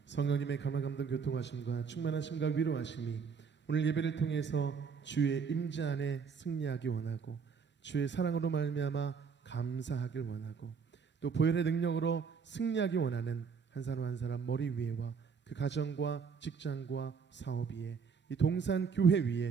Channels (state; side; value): quieter; left; 6.0 dB